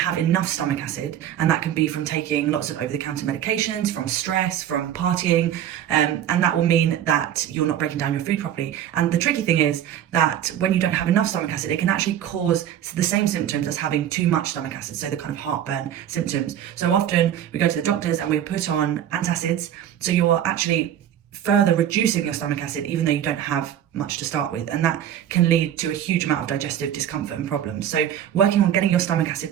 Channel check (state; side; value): quieter; left; 10.5 dB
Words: enough stomach acid, and that can be from taking lots of over-the-counter medications, from stress, from partying, and that will mean that you're not breaking down your food properly. And the tricky thing is that when you don't have enough stomach acid, it can actually cause the same symptoms as having too much stomach acid, so the kind of heartburn symptoms. So often we go to the doctors and we put on antacids, so you are actually further reducing your stomach acid even though you don't have much to start with, and that can lead to a huge amount of digestive discomfort and problems. So working on getting your stomach acid